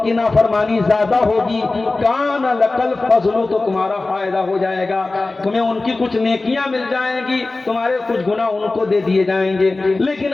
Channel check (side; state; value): right; quieter; 3.3 dB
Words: کی نافرمانی زیادہ ہوگی، کان لکل فضل، تو تمہارا فائدہ ہو جائے گا، تمہیں ان کی کچھ نیکیاں مل جائیں گی، تمہارے کچھ گناہ ان کو دے دیے جائیں گے۔ لیکن